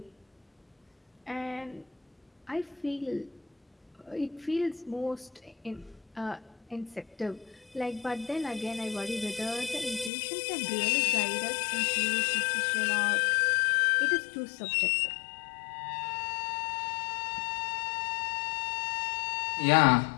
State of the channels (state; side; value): drops out; right; at 10.1 s